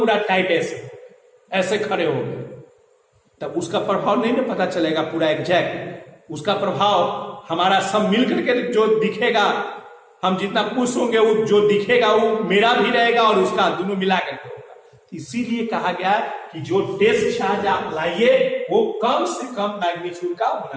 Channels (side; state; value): both; identical; correlation 1.00